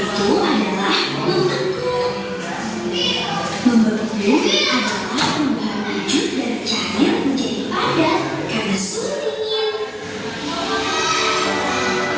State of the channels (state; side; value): identical; both; correlation 1.00